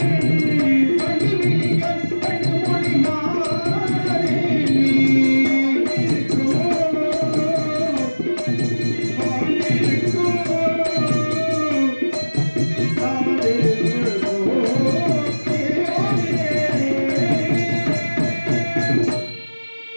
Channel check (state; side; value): inverted; both; correlation -1.00